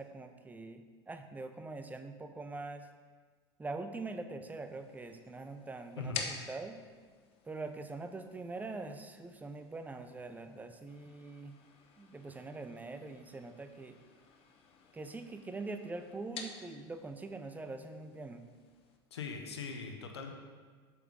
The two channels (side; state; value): both; normal; correlation 0.51